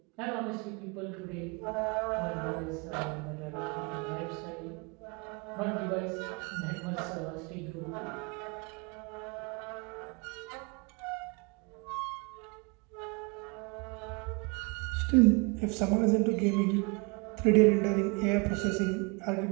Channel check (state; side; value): quieter; left; 29.8 dB